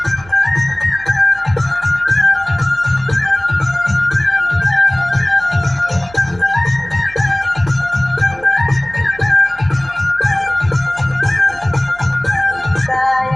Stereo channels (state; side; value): noise; right; hum, 22 dB below the sound